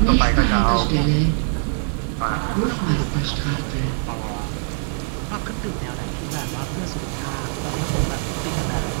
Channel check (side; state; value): left; silent; 64 dB below the other